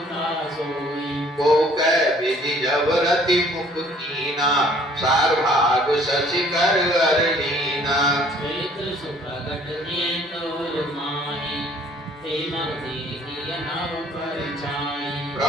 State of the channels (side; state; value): both; normal; correlation 0.57